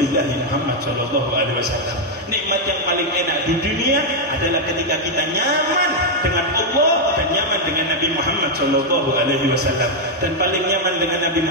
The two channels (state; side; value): normal; both; correlation 0.00